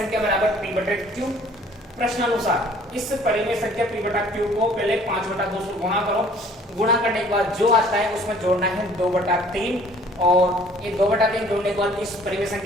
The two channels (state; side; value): normal; both; correlation 0.55